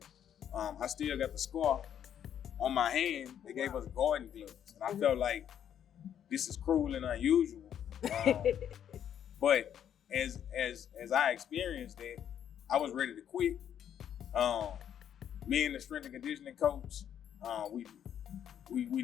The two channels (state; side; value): quieter; right; 9.5 dB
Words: I still got the scar on my hand, they gave us garden gloves. And I felt like this is cruel and unusual. But as I experienced that, I was ready to quit. Me and the strength and conditioning coach, we